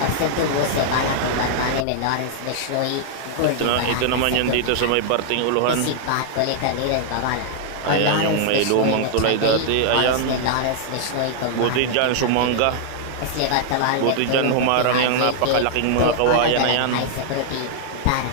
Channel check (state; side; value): different; both; correlation -0.01